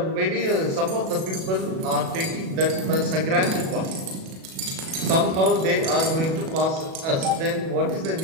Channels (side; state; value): left; late; 37 ms